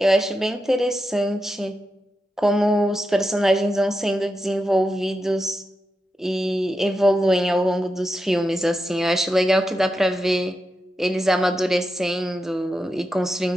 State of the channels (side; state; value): both; normal; correlation 0.88